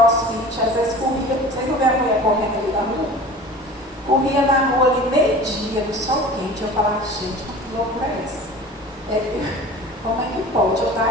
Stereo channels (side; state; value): both; normal; correlation 0.39